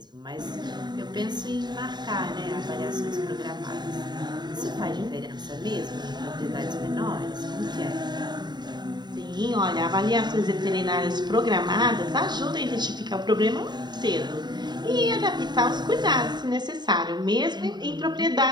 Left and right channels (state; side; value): late; left; 0.21 ms